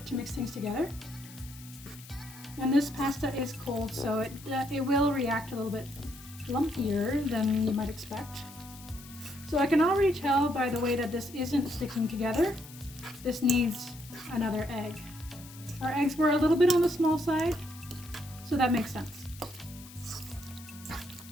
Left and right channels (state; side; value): noise; left; hiss, 18 dB below the sound